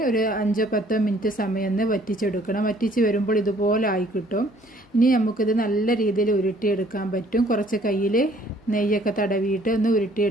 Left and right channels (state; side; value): normal; both; correlation 0.59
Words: ഒരു 5-10 മിനിറ്റ് സമയം ഒന്ന് വറ്റിച്ചെടുക്കണം. വറ്റിച്ച് വരുമ്പോൾ ഇതുപോലെ ആയി കിട്ടും. ഇനി നമുക്കിത് നല്ല രീതിയിൽ ഉരുട്ടിയെടുക്കാൻ പറ്റും. കുറച്ച് കയ്യിൽ നെയ്യൊക്കെ തടവിയിട്ട് ഒന്ന്